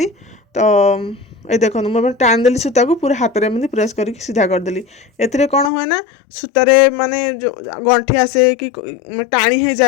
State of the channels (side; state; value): right; drops out; at 5.7 s